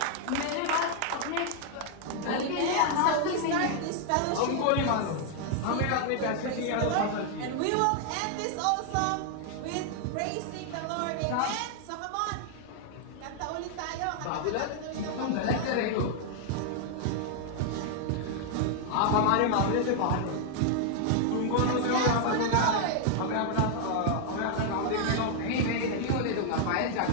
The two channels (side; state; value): both; different; correlation 0.00